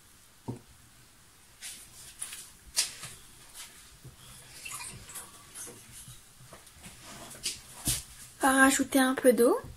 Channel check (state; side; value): identical; both; correlation 1.00